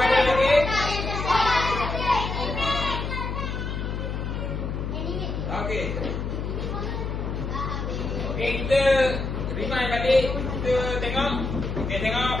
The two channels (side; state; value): left; noise; hum, 3 dB below the sound